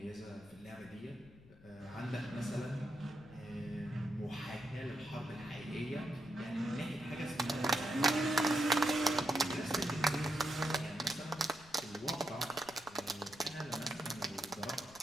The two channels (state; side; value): noise; left; rumble, 22 dB below the sound